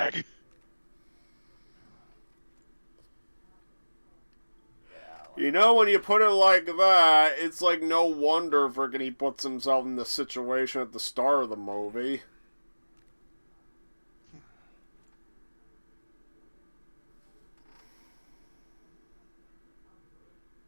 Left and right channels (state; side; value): inverted; both; correlation -1.00